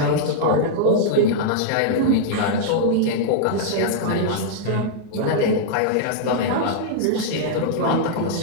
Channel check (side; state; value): both; different; correlation -0.02